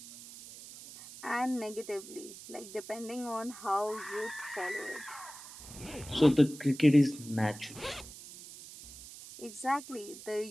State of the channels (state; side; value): noise; right; hiss, 15 dB below the sound